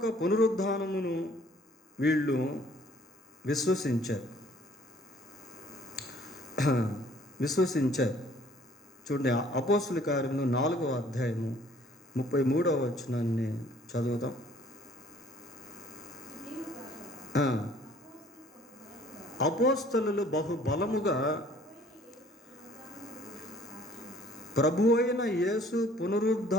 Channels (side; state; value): both; normal; correlation 0.57